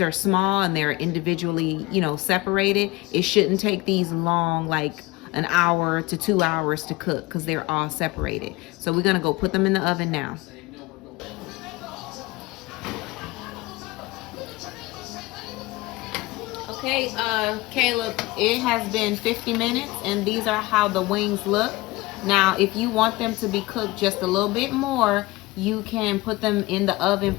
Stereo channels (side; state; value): right; quieter; 21.2 dB